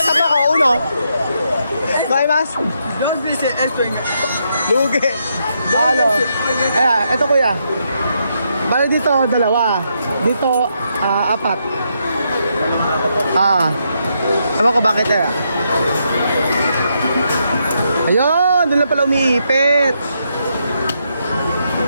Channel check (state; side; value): inverted; both; correlation -0.79